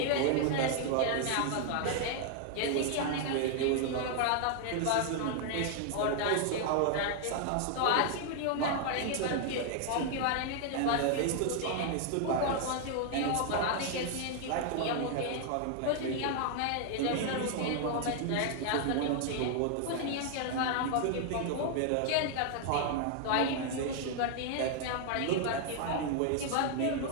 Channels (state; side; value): different; both; correlation 0.00